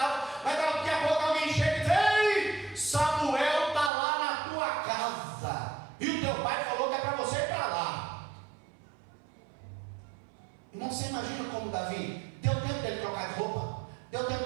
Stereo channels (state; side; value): drops out; left; at 3.9 s